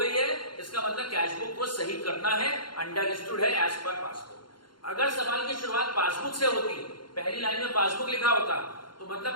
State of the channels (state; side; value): late; right; 0.72 ms